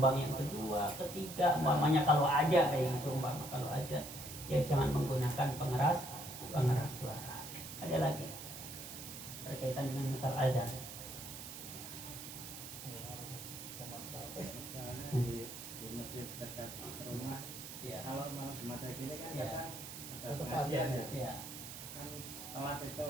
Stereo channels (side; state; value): right; noise; hiss, 10 dB below the sound